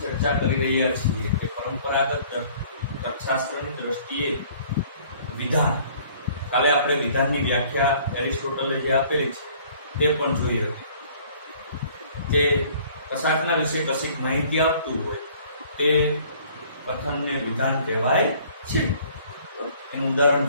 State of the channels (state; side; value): inverted; both; correlation -0.55